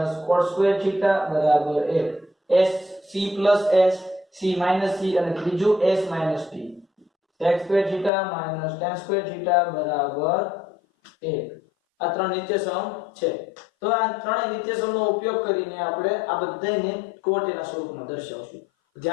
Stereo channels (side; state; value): right; drops out; at 8.1 s